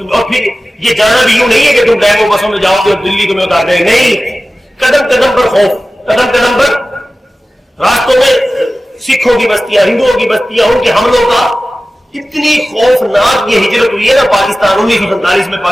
اور پھر یہ جانا بھی یوں نہیں ہے کہ تم ڈیمو بسوں میں جاؤ گے اور دلی تمہیں اتار دیں، نہیں، قدم قدم پر خوف، قدم قدم پر راستوں میں سکھوں کی بستیاں، ہندوؤں کی بستیاں، ان کے حملوں کا اتنی خوفناک یہ ہجرت ہوئی ہے نا پاکستان 1947 میں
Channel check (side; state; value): both; normal; correlation 0.96